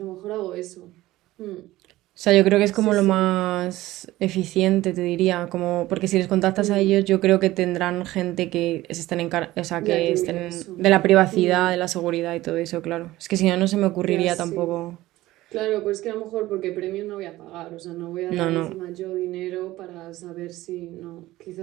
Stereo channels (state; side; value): quieter; left; 16.9 dB